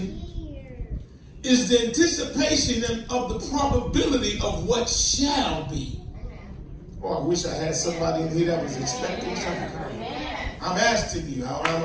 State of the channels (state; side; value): identical; both; correlation 1.00